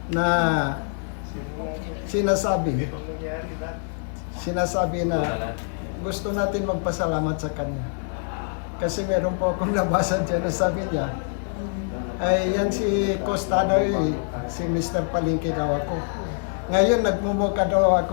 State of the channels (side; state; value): right; silent; digital silence